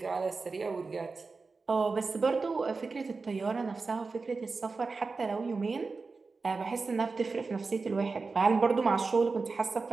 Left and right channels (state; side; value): quieter; left; 4.2 dB